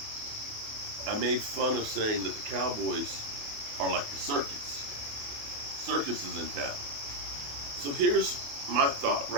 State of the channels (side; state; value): left; late; 28 ms